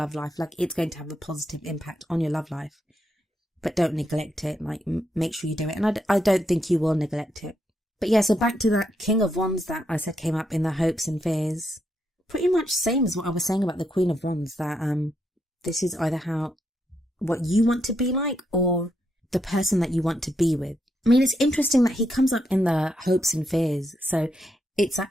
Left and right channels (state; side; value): normal; both; correlation 0.80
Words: life. Like, it's going to have a positive impact on your love life, but don't neglect it. Like, make sure you do it. And I don't think you will neglect it. But yeah, so back to that King of Wands that I said came up in the hopes and fears. Pretty much same as what I was saying about the Queen of Wands, that this is either what you want to be like or the person that you want to be with. I mean, it's interesting that he comes up in the hopes and fears. So it's